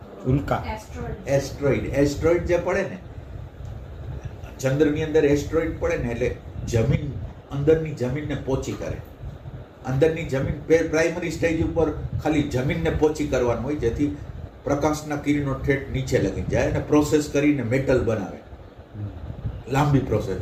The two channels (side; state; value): both; identical; correlation 1.00